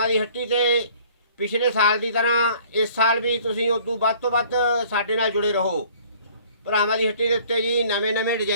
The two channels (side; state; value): both; inverted; correlation -0.54